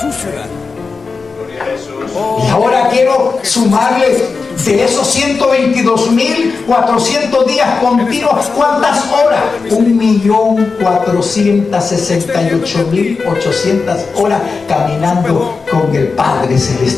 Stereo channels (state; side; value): quieter; right; 4.6 dB